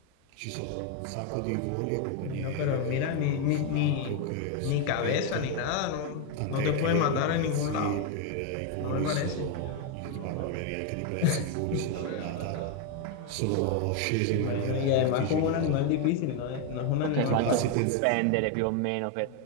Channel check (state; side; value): different; both; correlation 0.01